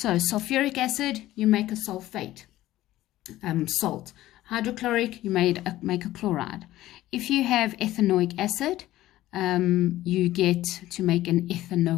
sulfuric acid, you make a sulfate, salt. Hydrochloric, you make a chloride. If you have ethanoic acid, you get to make an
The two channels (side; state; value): right; quieter; 15.2 dB